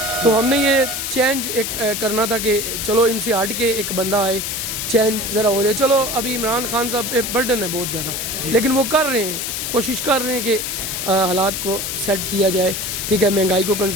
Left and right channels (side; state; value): left; noise; hiss, 3 dB below the sound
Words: تو ہم نے یہ چینج ایک کرنا تھا کہ چلو ان سے ہٹ کے ایک بندہ آئے، چینج ذرا ہو جائے. چلو ابھی عمران خان صاحب پہ برڈن ہے بہت زیادہ، لیکن وہ کر رہے ہیں، کوشش کر رہے ہیں کہ حالات کو سیٹ کیا جائے، ٹھیک ہے، مہنگائی کو